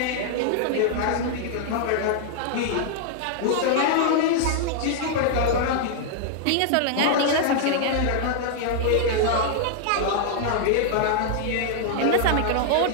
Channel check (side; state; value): both; different; correlation -0.01